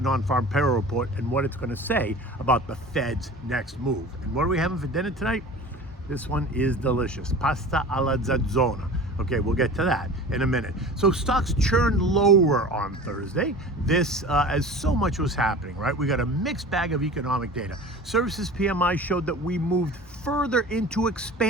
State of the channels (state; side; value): normal; both; correlation 0.38